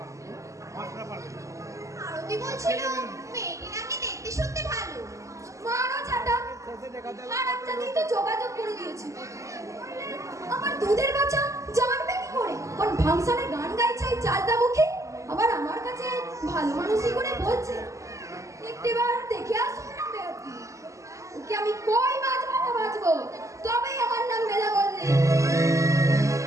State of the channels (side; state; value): left; late; 0.15 ms